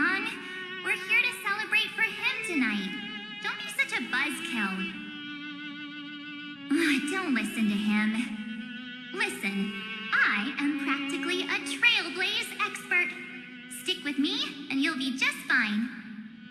We're here to celebrate for him tonight. Don't be such a buzzkill. Don't listen to him. Listen, I am practically a Trailblaze expert. Stick with me, and you'll be just fine.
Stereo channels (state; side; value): identical; both; correlation 1.00